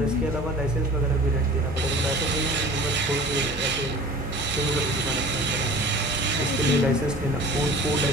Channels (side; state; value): both; normal; correlation 0.43